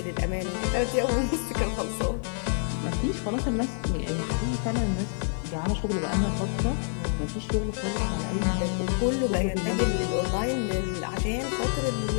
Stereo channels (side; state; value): right; silent; digital silence